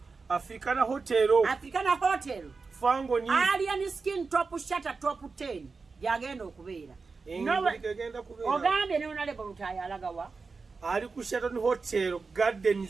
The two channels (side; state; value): left; quieter; 4.5 dB